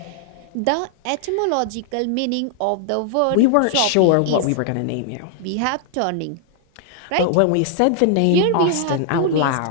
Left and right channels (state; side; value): different; both; correlation 0.00